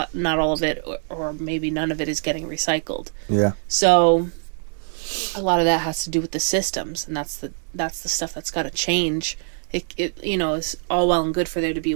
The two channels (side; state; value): left; silent; digital silence